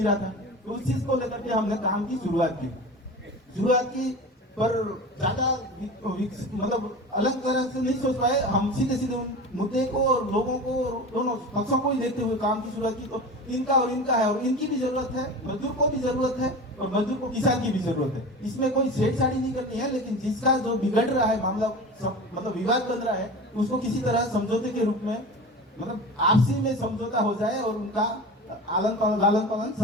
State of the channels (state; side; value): normal; both; correlation 0.32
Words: रहा था। तो उस चीज को लेकर के हमने काम की शुरुआत की, पर ज्यादा मतलब अलग तरह से नहीं सोच पाए हम। सीधे मुद्दे को और लोगों को, दोनों पक्षों को ही देखते हुए काम की शुरुआत की। तो इनका है और इनकी भी जरूरत है, मजदूर को भी जरूरत है और मजदूर को किसान की भी जरूरत है। इसमें कोई छेड़छाड़ी नहीं करनी है, लेकिन जिसका जो बिगड़ रहा है मामला, मतलब विवाद बन रहा है, उसको किसी तरह समझौते के रूप में, मतलब आपसी में समझौता हो जाए और उनका लालन पालन